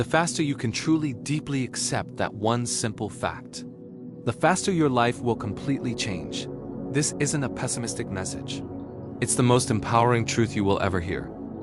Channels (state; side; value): identical; both; correlation 1.00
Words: faster you can truly deeply accept that one simple fact, the faster your life will completely change. This isn't a pessimistic message. It's the most empowering truth you will ever hear.